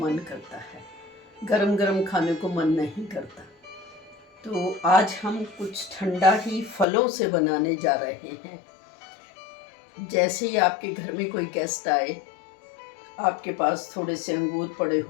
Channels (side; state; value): right; drops out; at 6.9 s